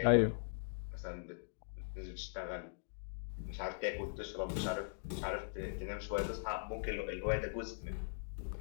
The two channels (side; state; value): right; silent; digital silence